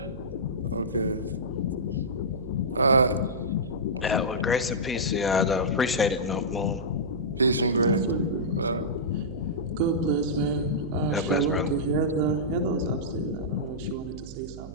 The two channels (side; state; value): right; noise; hum, 13 dB below the sound